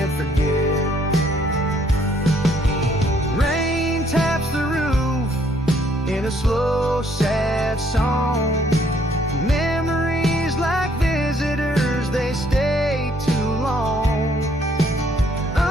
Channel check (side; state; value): both; normal; correlation 0.66